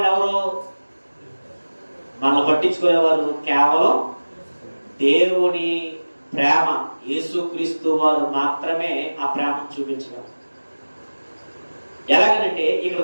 ఎవరు? మనల్ని పట్టించుకునేవారు కేవలం దేవుని ప్రేమ, యేసుక్రీస్తు వారు మాత్రమే ఆ ప్రేమను చూపించగలరు. ఎలాగనంటే ఇక్కడ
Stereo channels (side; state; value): both; inverted; correlation -1.00